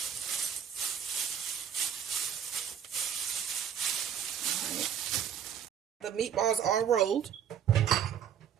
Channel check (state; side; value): quieter; left; 8.6 dB